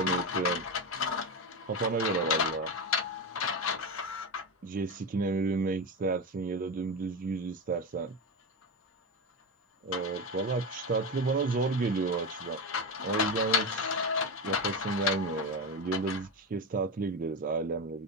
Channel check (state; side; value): normal; both; correlation 0.17